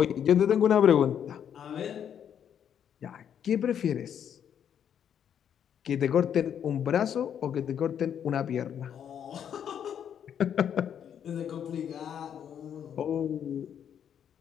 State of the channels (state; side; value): quieter; right; 8.8 dB